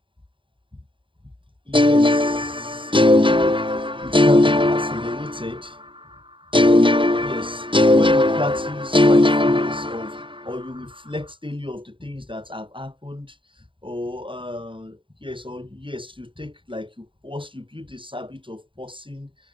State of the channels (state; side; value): late; left; 0.25 ms